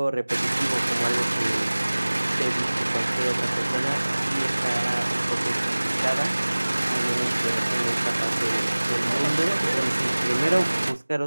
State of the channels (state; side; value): inverted; both; correlation -1.00